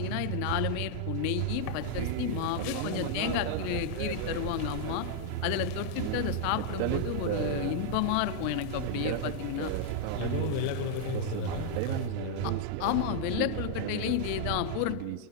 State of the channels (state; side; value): different; both; correlation -0.01